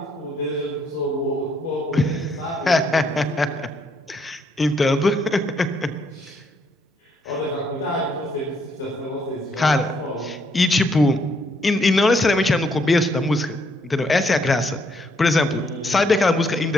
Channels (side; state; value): both; normal; correlation 0.72